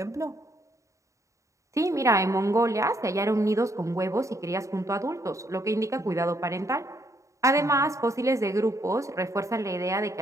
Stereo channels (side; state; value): left; late; 0.15 ms